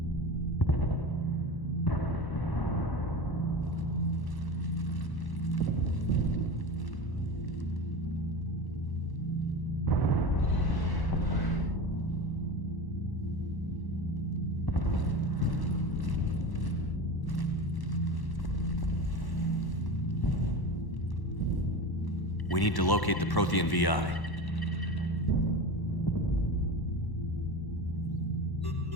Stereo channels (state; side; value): late; right; 1.1 ms